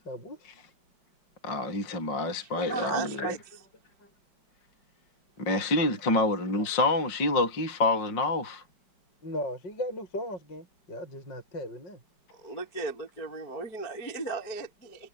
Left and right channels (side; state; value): right; late; 5.5 ms